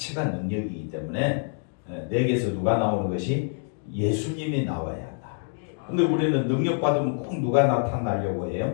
능력이기 때문에 내게서 누가 나오는 것이 예수님이 나와야 한다. 근데 우리는 능력 받으면 꼭 누가 나타나려고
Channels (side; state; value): right; silent; 61 dB below the other